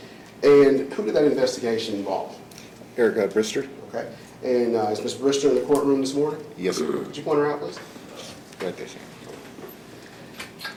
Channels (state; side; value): identical; both; correlation 1.00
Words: And who did that investigation involve? Erica Brister? Okay. And is Ms. Brister in the courtroom this morning? Yes, sir. Could you point her out, please? Right there, sir.